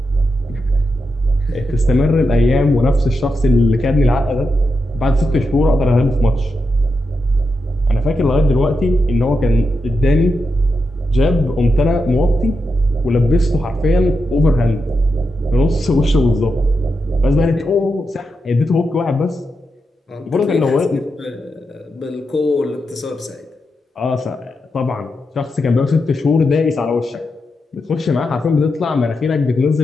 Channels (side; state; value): both; normal; correlation 0.87